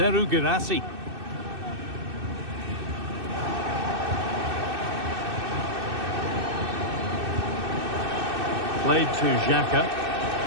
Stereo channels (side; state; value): left; late; 2.6 ms